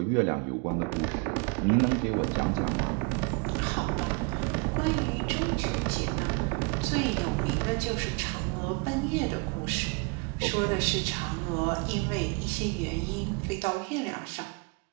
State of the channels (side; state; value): left; quieter; 31.1 dB